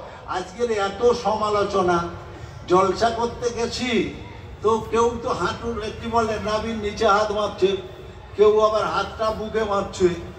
আজকের এত সমালোচনা, জলসা করতে গেছি তো কেউ তো হাঁটুর কি বলে নাভির নিচে হাত মারছে, কেউ আবার হাতটা বুকে মারছে,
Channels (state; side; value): identical; both; correlation 1.00